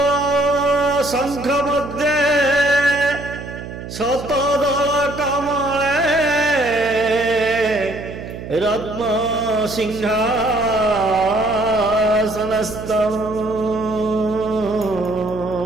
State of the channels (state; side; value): noise; right; hum, 11 dB below the sound